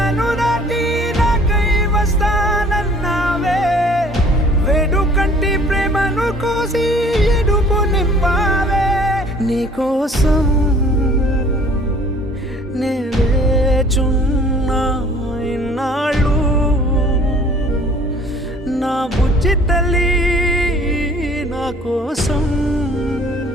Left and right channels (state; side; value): normal; both; correlation 0.54